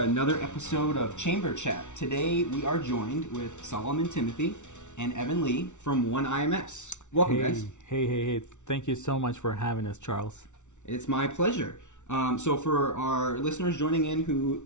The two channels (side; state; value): right; late; 0.84 ms